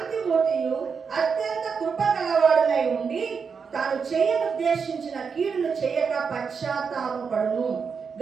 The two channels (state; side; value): quieter; left; 5.8 dB